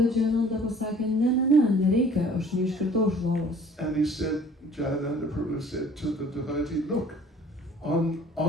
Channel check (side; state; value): both; normal; correlation 0.52